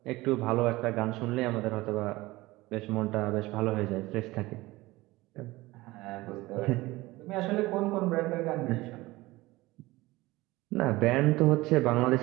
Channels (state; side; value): quieter; left; 19.7 dB